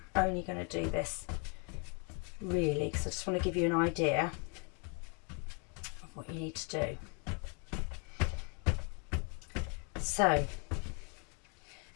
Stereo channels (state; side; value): quieter; right; 35.8 dB